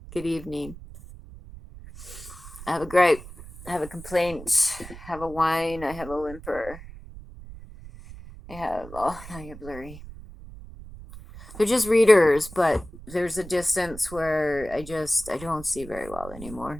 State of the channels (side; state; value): right; noise; rumble, 15 dB below the sound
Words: good evening. I have a gripe. I have a complaint. I have a whine. I have a whimper. Now you're blurry. They're just readers, but there's a distance where I don't see very well